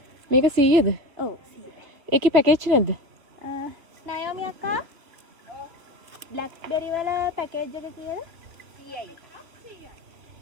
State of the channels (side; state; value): left; late; 3.0 ms